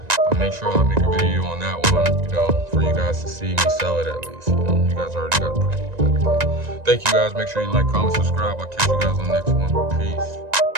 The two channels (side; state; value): left; late; 1.9 ms